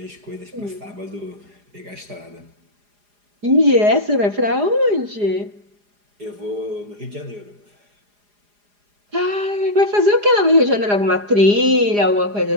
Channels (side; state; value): left; late; 4.9 ms